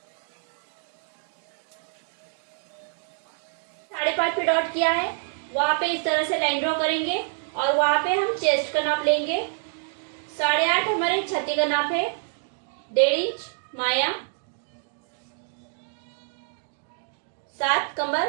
5.5 पे डॉट किया है वहां पे इस तरह से लाइन ड्रॉ करेंगे और वहां पे हम चेस्ट का नाप लेंगे। 8.5 हमारे छाती का नाप है। 1.5 इंच माया, 7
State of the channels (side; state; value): left; silent; 60 dB below the other